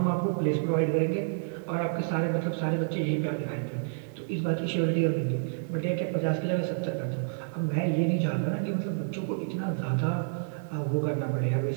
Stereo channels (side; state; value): left; silent; 59 dB below the other